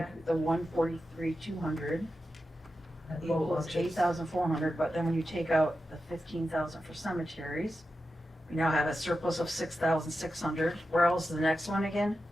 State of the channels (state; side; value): normal; both; correlation 0.90